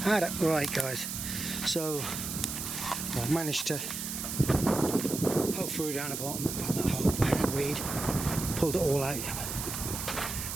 Right, guys. So I've managed to poke through down the bottom and pull that whole handweed, pulled it all out.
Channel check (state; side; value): noise; right; hiss, 5 dB below the sound